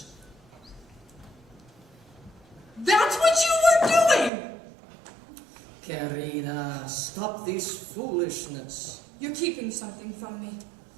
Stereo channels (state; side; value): drops out; left; at 4.3 s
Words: That's what you were doing! Querida, stop this foolishness. You're keeping something from me.